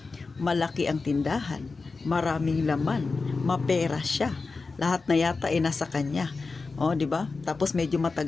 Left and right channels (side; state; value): right; quieter; 4.1 dB